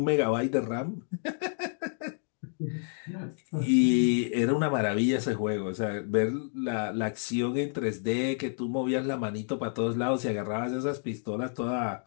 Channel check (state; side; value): silent; right; digital silence